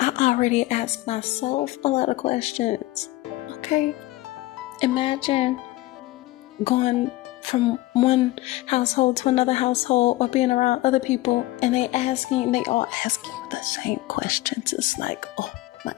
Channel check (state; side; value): quieter; right; 18.2 dB